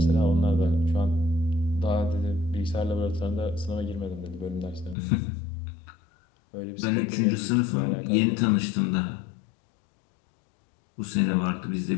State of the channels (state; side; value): drops out; right; at 5.0 s